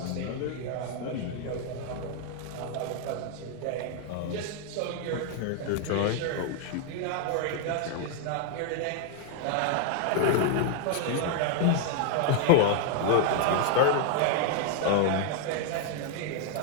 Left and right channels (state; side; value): different; both; correlation 0.00